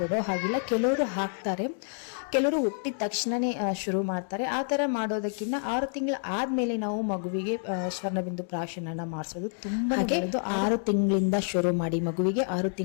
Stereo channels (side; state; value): right; silent; 59 dB below the other